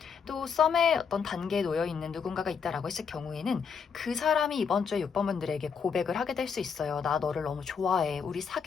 또 썸의 어떤 단계에 놓여 있는 누군가가 있다라고 했을 경우에는 그 사람이 이번 주에 6번 분들에게 고백을 하게 될 수 있어요. 나 너를 너무 좋아해. 우리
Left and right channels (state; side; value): quieter; right; 6.3 dB